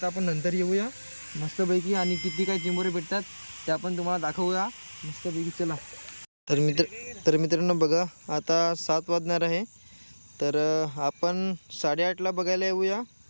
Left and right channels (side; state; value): both; inverted; correlation -1.00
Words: आपण नंतर येऊया मस्तपैकी आणि किती काय चिंबोरे भेटतात ते आपण तुम्हाला दाखवूया मस्तपैकी. चला तर मित्रांनो बघा आता 7 वाजणार आहे. तर आपण 8:30ला बघायला येऊया